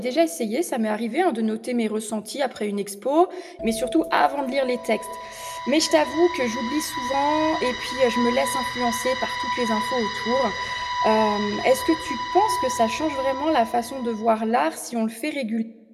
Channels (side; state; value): both; identical; correlation 1.00